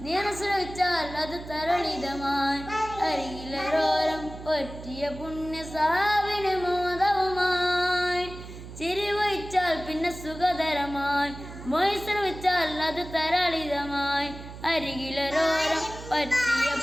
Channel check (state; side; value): noise; right; hum, 13 dB below the sound